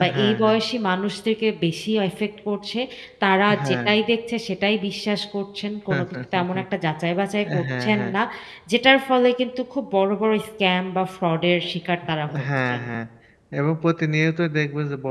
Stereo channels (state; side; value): identical; both; correlation 1.00